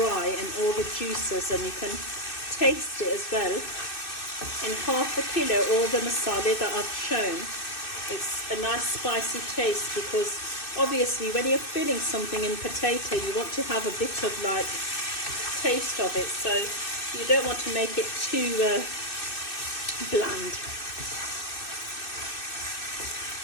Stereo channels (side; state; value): right; late; 2.6 ms